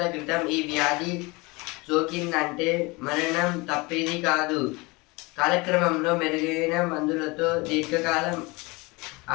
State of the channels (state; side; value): quieter; right; 25.2 dB